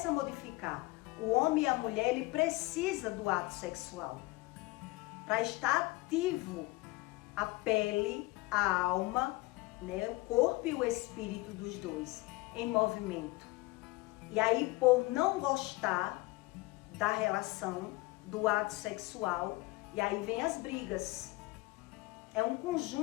a modificar. O homem e a mulher, ele precisa do ato sexual para estar ativo a pele, a alma, né, o corpo e o espírito dos dois em movimento. E aí, por não gostar da relação, do ato sexual, e aí vem as brigas. É um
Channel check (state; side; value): quieter; right; 22.0 dB